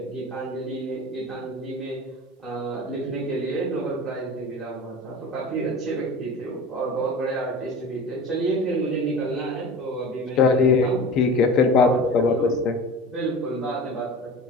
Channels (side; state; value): both; normal; correlation 0.35